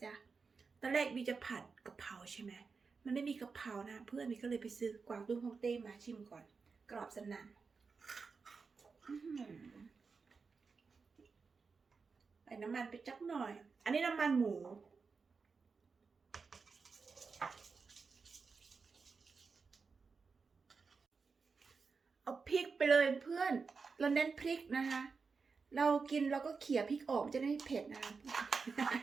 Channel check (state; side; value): quieter; left; 4.9 dB